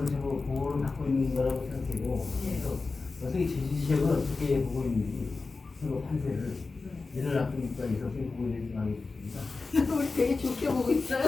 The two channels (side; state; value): right; quieter; 3.9 dB